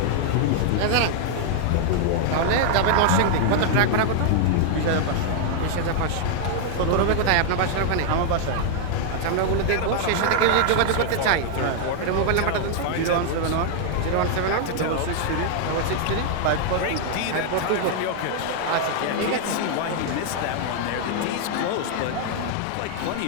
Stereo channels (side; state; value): both; different; correlation 0.00